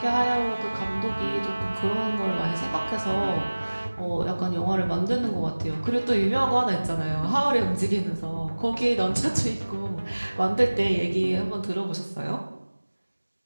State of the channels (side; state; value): both; inverted; correlation -1.00